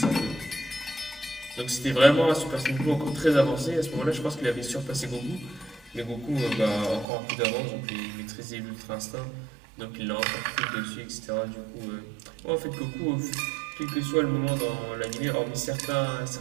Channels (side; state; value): left; drops out; at 7.1 s